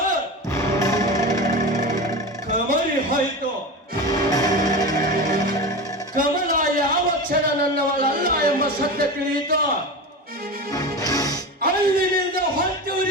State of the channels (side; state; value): both; normal; correlation 0.26